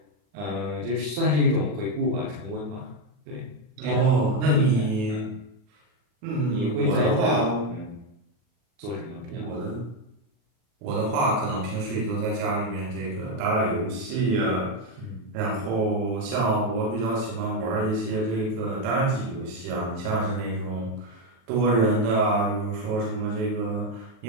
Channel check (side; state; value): left; late; 39 ms